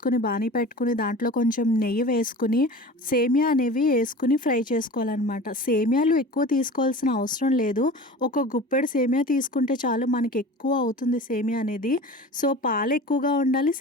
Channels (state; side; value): normal; both; correlation 0.37